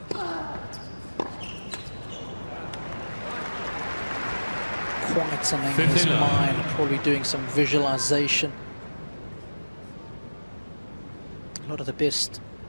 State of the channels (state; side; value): inverted; both; correlation -1.00